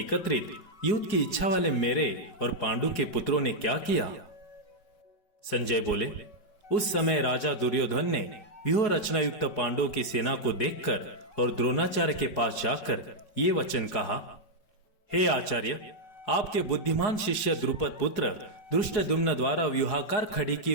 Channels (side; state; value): right; late; 4.8 ms